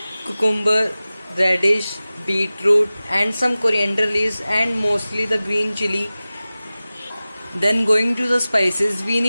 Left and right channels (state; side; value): inverted; both; correlation -0.97